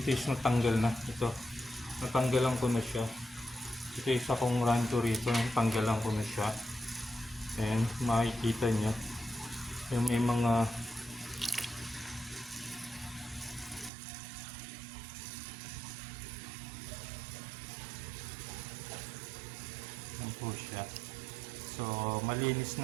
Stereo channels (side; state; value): left; drops out; at 13.9 s